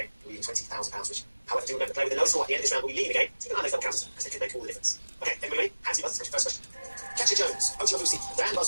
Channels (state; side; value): inverted; both; correlation -1.00